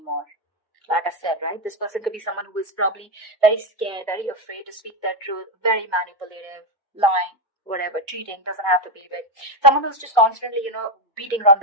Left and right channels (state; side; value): normal; both; correlation 0.07